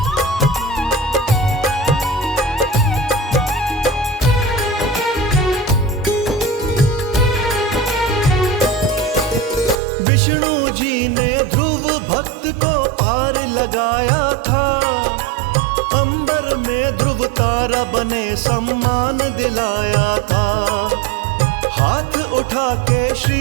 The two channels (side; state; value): left; drops out; at 9.8 s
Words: विष्णु जी ने ध्रुव भक्त को पार लगाया था, अंबर में ध्रुव तारा बने सम्मान दिलाया था। हाथ उठा के श्री